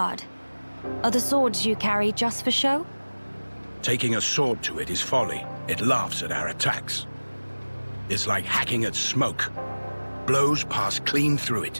Are the swords you carry just for show? Taking a sword to it is folly. It laughs at our attacks. It's like hacking at smoke. Blows pass clean through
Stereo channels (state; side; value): inverted; both; correlation -1.00